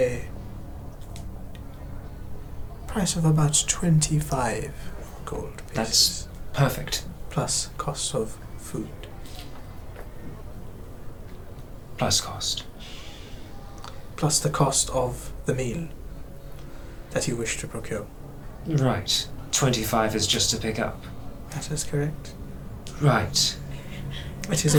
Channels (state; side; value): identical; both; correlation 1.00